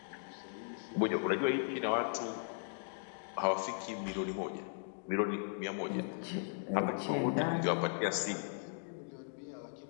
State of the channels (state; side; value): silent; right; digital silence